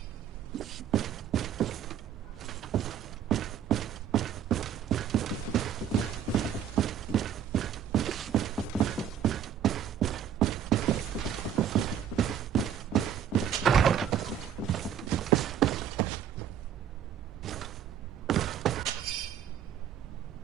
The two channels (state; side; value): quieter; left; 9.0 dB